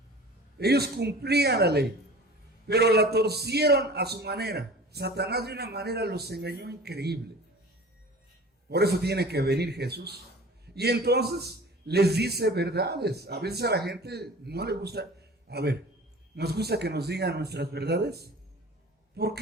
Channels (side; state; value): both; normal; correlation 0.41